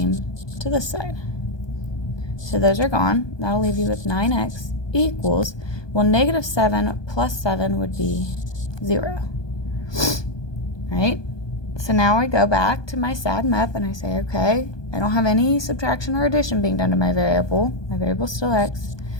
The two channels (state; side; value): late; right; 1.2 ms